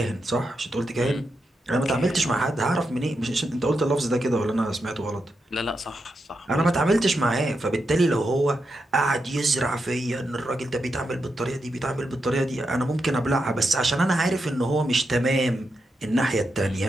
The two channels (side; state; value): both; normal; correlation 0.85